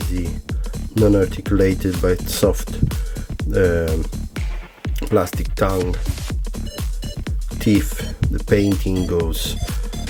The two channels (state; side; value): identical; both; correlation 1.00